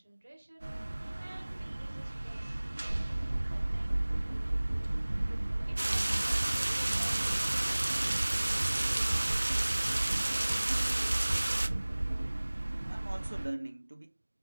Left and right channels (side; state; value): both; inverted; correlation -1.00